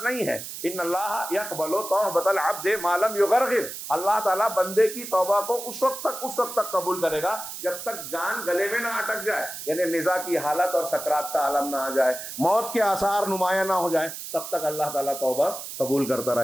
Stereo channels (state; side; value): noise; right; hiss, 9 dB below the sound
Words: نہیں ہے۔ ان اللہ یقبل توبۃ العبد ما لم یغرغر، اللہ تعالیٰ بندے کی توبہ کو اس وقت تک قبول کرے گا جب تک جان گلے میں نہ اٹک جائے، یعنی نزا کی حالت اور سکرات کا عالم نہ آ جائے، موت کے آثار نمایاں نہ ہو جائیں، تب تک اللہ تعالیٰ توبہ قبول کرتا